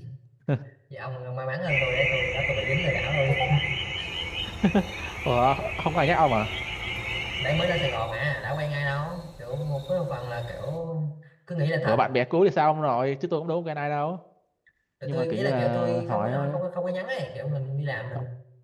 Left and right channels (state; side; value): identical; both; correlation 1.00